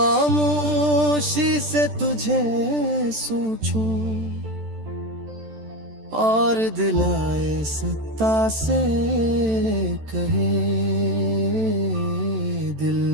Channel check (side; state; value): left; late; 14 ms